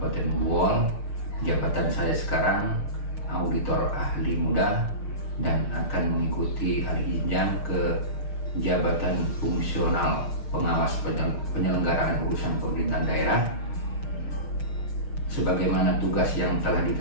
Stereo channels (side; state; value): right; late; 6.4 ms